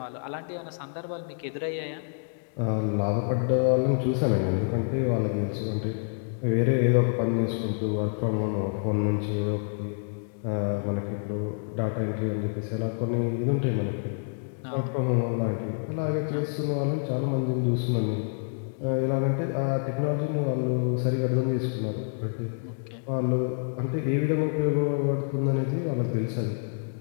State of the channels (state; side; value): silent; right; digital silence